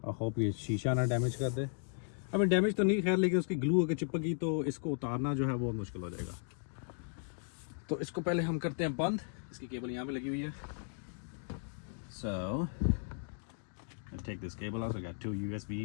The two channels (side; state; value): right; silent; digital silence